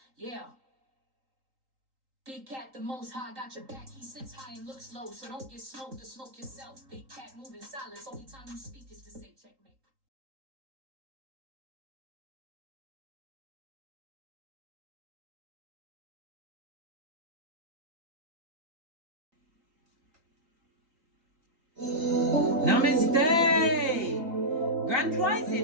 Yeah. Big cat, the most high, got your back. He sits high and looks low, so don't get smoked or smoke yourself. Big cat, move in silence. Only time you speak is to say checkmate. Namaste! Grand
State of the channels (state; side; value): late; left; 3.8 ms